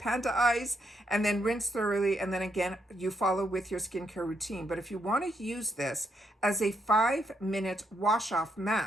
eyes, and then rinse thoroughly, and then again, you follow with your skincare routine. But if you want to use this as a 5-minute wash-off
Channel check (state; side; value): normal; both; correlation 0.77